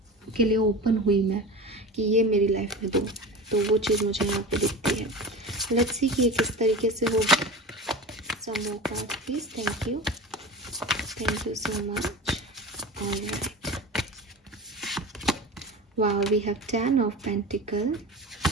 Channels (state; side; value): normal; both; correlation 0.31